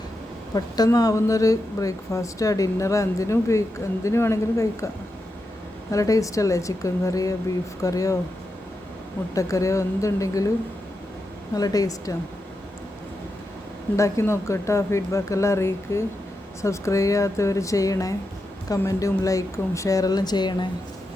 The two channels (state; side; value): normal; both; correlation 0.88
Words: പെട്ടെന്നാവുന്നൊരു ബ്രേക്ക്ഫാസ്റ്റ്, ഡിന്നർ, എന്തിനും വേണമെങ്കിലും കഴിക്കാം. നല്ല ടേസ്റ്റല്ലേ? ചിക്കൻ കറിയോ ബീഫ് കറിയോ മുട്ടക്കറിയോ എന്തുണ്ടെങ്കിലും നല്ല ടേസ്റ്റാണ്. ഉണ്ടാക്കി നോക്കട്ടോ. ഫീഡ്ബാക്കെല്ലാം അറിയിക്ക്. സബ്സ്ക്രൈബ് ചെയ്യാത്തവർ ചെയ്യണേ. കമൻറ്റും ലൈക്കും ഷെയറെല്ലാം ചെയ്യണേ.